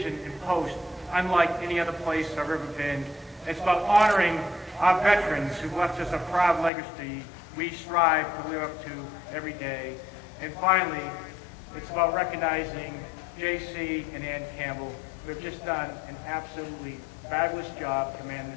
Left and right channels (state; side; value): drops out; right; at 6.7 s